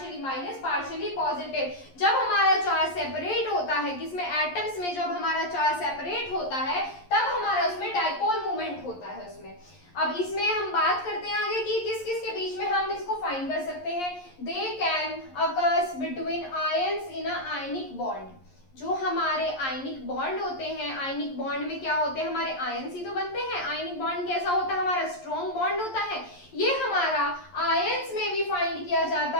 minus partially positive. जब हमारा चार्ज सेपरेट होता है, किसमें, एटम्स में, जब हमारा चार्ज सेपरेट होता है तब हमारा उसमें डाइपोल मूवमेंट होता है उसमें। अब इसमें हम बात करते हैं आगे कि किस किस के बीच में हम इसको फाइंड कर सकते हैं। They can occurs between ions in a ionic bond. जो हमारे आयनिक बॉन्ड होते हैं, आयनिक बॉन्ड में क्या होते हैं, हमारे आयंस ही तो बनते हैं। आयनिक बॉन्ड कैसा होता है, हमारा स्ट्रॉन्ग बॉन्ड होता है। ये हमारा आयंस में भी फाइंड किया जाता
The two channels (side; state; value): right; late; 11 ms